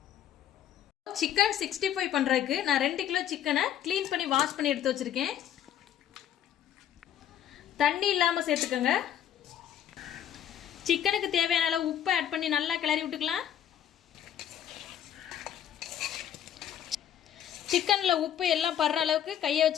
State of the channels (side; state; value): right; quieter; 10.3 dB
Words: சிக்கன் 65 பண்ணுறதுக்கு நான் 2 கிலோ சிக்கனை க்ளீன் பண்ணி வாஷ் பண்ணி எடுத்து வச்சுருக்கேன். தண்ணி இல்லாமல் சேர்த்துக்கோங்க. சிக்கனுக்கு தேவையான அளவு உப்பு ஆட் பண்ணி நல்லா கிளறி விட்டுக்கலாம். சிக்கனில் உப்பு எல்லாம் படுற அளவுக்கு கையை